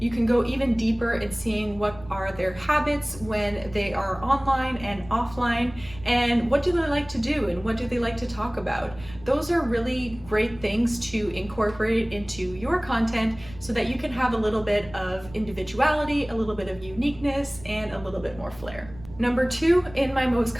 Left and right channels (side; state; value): right; noise; rumble, 18 dB below the sound